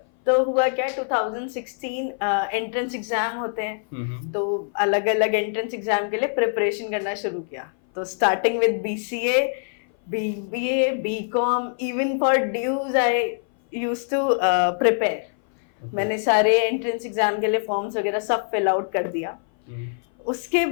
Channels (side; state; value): right; silent; 58 dB below the other